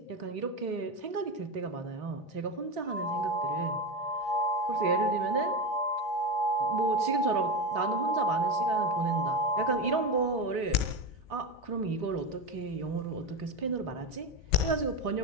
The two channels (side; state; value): left; late; 3.7 ms